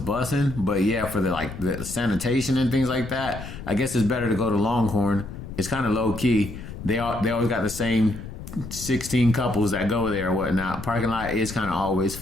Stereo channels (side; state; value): left; noise; rumble, 11 dB below the sound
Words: but yeah, for the sanitation and things like that, I guess it's better to go to Longhorn. It's kind of low key. They always got the same 16 couples that go there or whatnot. Parking lot is kind of always